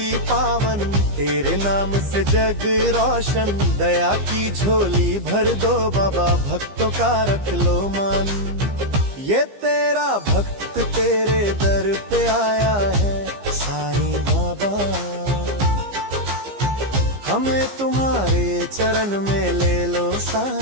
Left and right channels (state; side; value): late; left; 15 ms